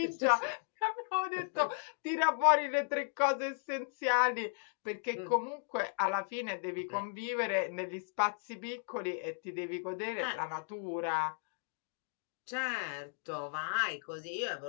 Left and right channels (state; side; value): silent; right; digital silence